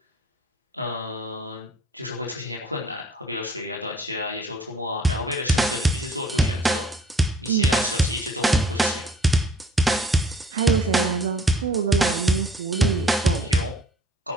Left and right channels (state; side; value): normal; both; correlation 0.56